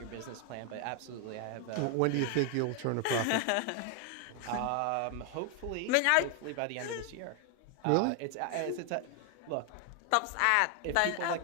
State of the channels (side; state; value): both; different; correlation 0.00